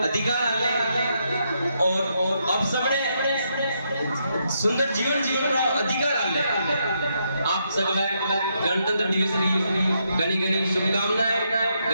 अधिकार आले और अब सबने सुंदर जीवन जीवन रो अधिकार आले। आप सगला गणतंत्र दिवस की घनी घनी शुभकामनाएं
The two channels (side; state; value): both; inverted; correlation -0.78